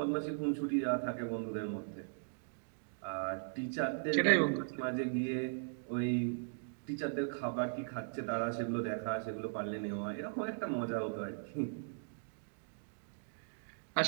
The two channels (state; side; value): silent; left; digital silence